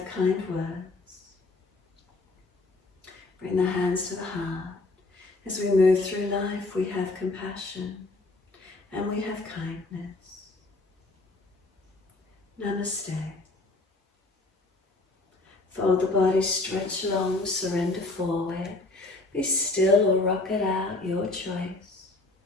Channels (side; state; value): right; quieter; 3.1 dB